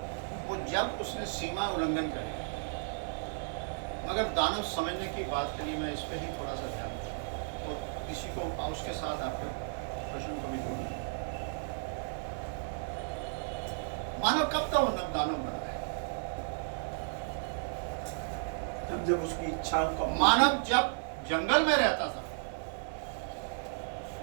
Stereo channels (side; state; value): left; silent; digital silence